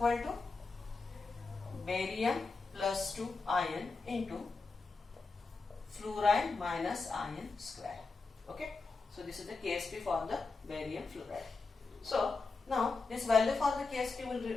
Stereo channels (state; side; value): quieter; right; 4.1 dB